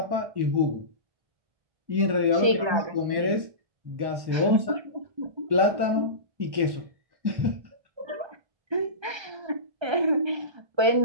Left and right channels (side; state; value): left; late; 1.3 ms